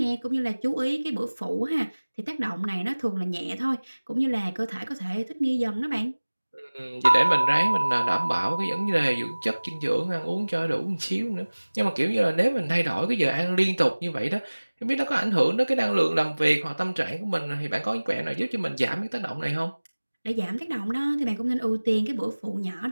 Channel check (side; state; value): both; inverted; correlation -1.00